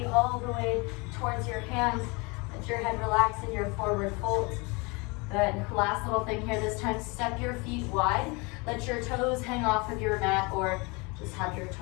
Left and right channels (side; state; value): right; quieter; 28.1 dB